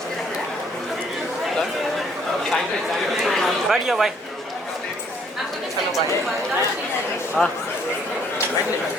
बैठ जाओ भाई I'm going to चलो send भाई it to Varda. She'll send it. हाँ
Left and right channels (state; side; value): normal; both; correlation 0.64